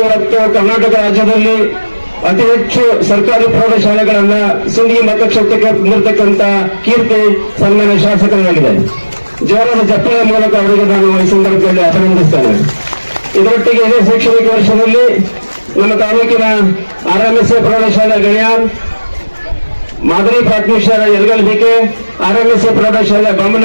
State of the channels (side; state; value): both; inverted; correlation -1.00